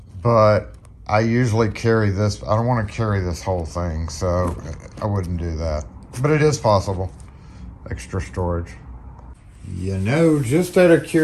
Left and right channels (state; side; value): identical; both; correlation 1.00